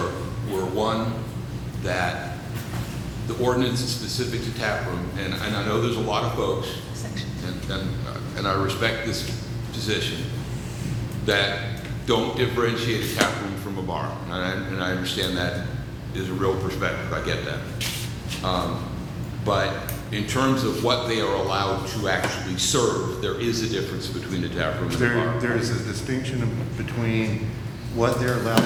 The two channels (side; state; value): both; identical; correlation 1.00